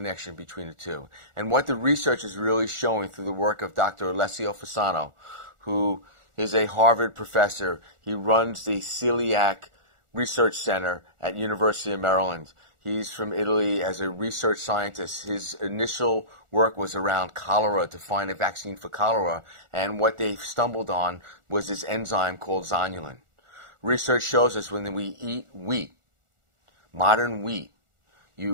between the two. And what the research is really showing through the work of Dr. Alessio Fasano, who is a Harvard professor. He runs the Celiac Research Center at University of Maryland. He's from Italy as a research scientist. His initial work was around cholera, to find a vaccine for cholera, and what they stumbled on was this enzyme called zonulin. Research shows us when we eat wheat, modern wheat,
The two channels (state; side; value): late; left; 1.4 ms